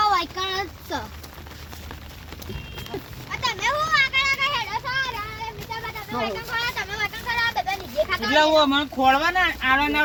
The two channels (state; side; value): identical; both; correlation 1.00